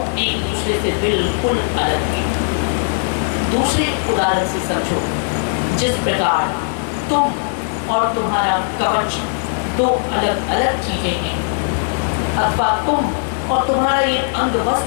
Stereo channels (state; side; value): silent; right; 67 dB below the other